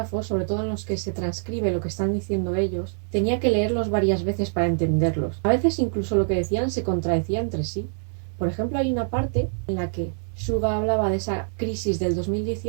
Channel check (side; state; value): left; silent; 62 dB below the other